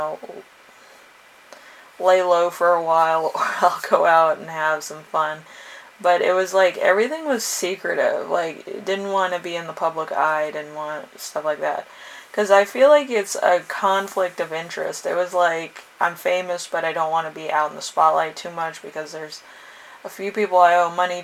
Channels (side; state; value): both; identical; correlation 1.00